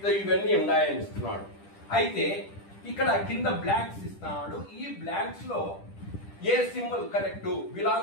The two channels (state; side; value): late; right; 10 ms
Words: ఇవన్నీ ఉన్నాయని ఇస్తున్నాడు. అయితే ఇక్కడ కింద బ్లాంక్స్ ఇస్తున్నాడు. ఈ బ్లాంక్స్ లో ఏ symbol correct,